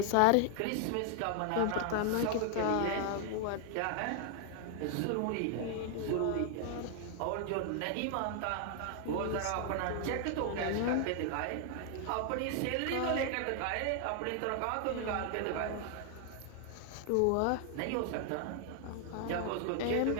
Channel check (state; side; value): different; both; correlation 0.00